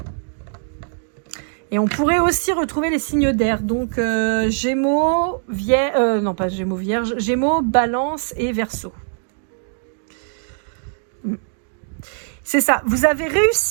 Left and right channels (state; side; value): silent; left; digital silence